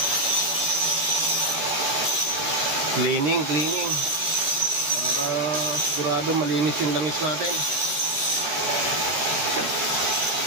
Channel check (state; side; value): late; left; 14 ms